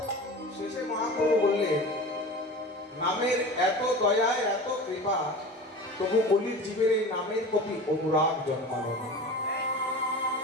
শেষে মহাপ্রভু বললেন, নামের এত দয়া এত কৃপা, তবু কলির জীবের এই নামের প্রতি অনুরাগ জন্মালো না।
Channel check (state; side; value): normal; both; correlation 0.34